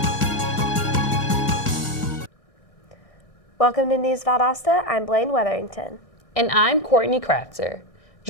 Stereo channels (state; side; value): late; right; 1.6 ms